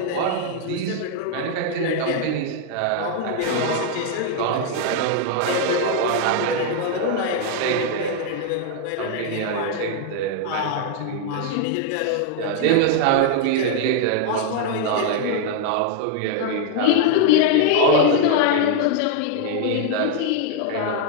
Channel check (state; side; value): different; both; correlation 0.00